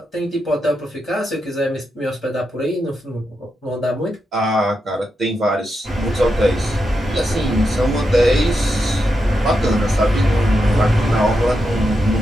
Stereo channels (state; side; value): normal; both; correlation 0.86